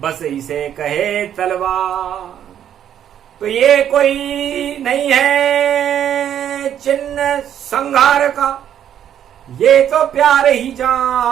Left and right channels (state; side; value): quieter; left; 9.9 dB